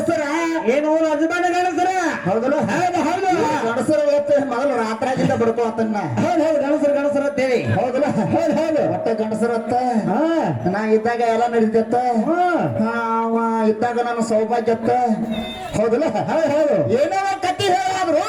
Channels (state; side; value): identical; both; correlation 1.00